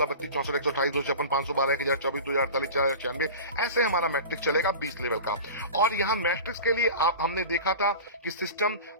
32, 64, 128, 256, 512, 1024, 2048, 4096, ऐसे हमारा मैट्रिक चलेगा 20 लेवल का। और यहाँ मैट्रिक्स के लिए हमने देखा था कि सिस्टम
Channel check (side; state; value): both; inverted; correlation -0.34